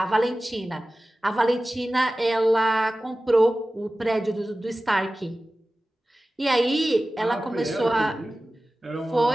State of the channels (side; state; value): both; normal; correlation 0.96